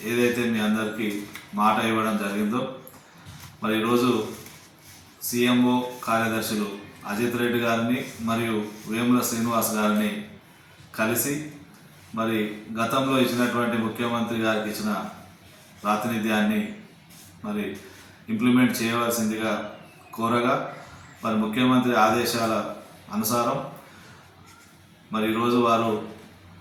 ఏదైతే మీ అందరికీ మాట ఇవ్వడం జరిగిందో, మరి ఈరోజు సీఎంఓ కార్యదర్శులు అజిత్ రెడ్డి గారిని మరియు వేముల శ్రీనివాస్ గారిని కలిసి మరి గతంలో ఇచ్చినటువంటి ముఖ్యమంత్రి గారికి ఇచ్చిన ప్రాతినిధ్యాన్ని మరి ఇంప్లిమెంట్ చేయవలసిందిగా కోరగా, మరి ముఖ్యమంత్రి ఆదేశాల అనుసారం మరి ఈరోజు వారు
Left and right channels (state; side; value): identical; both; correlation 1.00